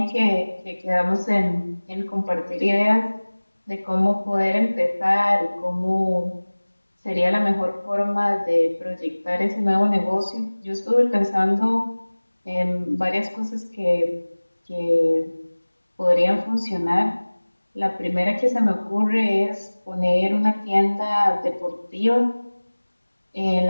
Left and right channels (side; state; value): both; inverted; correlation -1.00